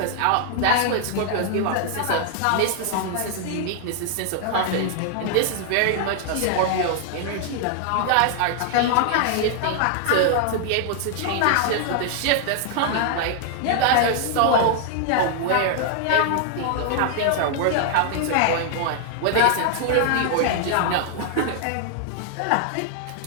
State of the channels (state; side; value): different; both; correlation 0.00